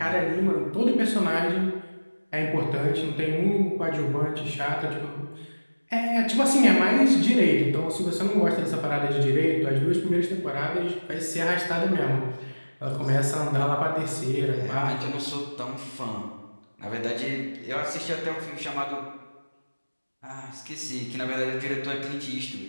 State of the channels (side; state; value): both; inverted; correlation -1.00